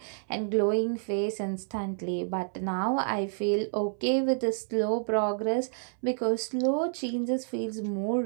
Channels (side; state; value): left; silent; 58 dB below the other